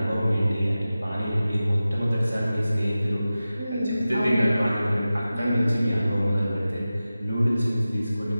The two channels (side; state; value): both; inverted; correlation -0.95